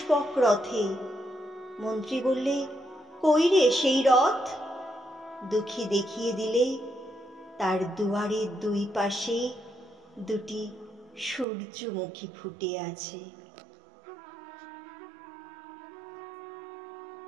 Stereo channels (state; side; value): drops out; left; at 11.5 s